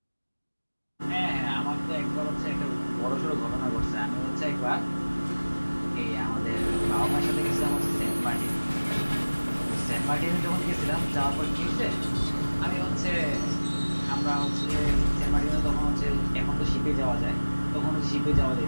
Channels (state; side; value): inverted; both; correlation -1.00